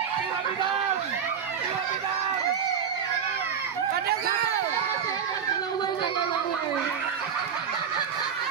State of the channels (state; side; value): quieter; left; 7.5 dB